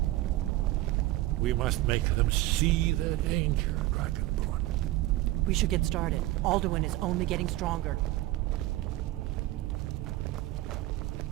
We must make them see the danger, Dragonborn. We should get started. Alduin is only getting stronger.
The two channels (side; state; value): left; quieter; 16.8 dB